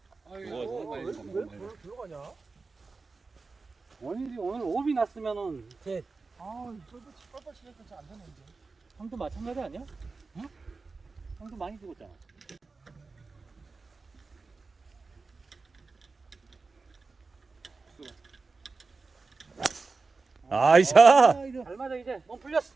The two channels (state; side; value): quieter; left; 4.1 dB